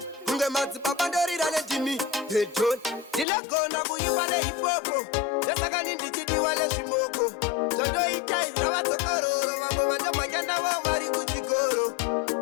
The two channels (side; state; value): right; drops out; at 3.2 s